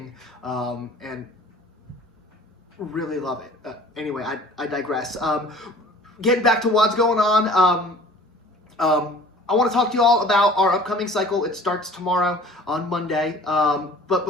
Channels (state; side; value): normal; both; correlation 0.48